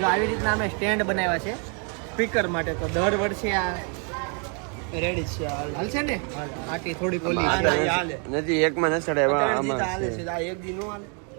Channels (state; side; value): quieter; left; 38.5 dB